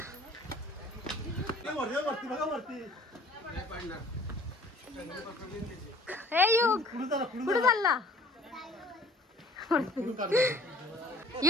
हे युग कुठे चालला?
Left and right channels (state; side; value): normal; both; correlation 0.53